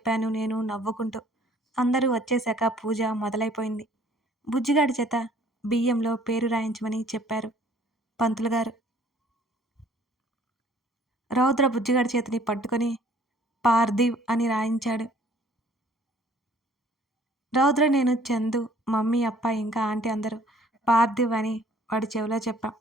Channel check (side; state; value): both; normal; correlation 0.57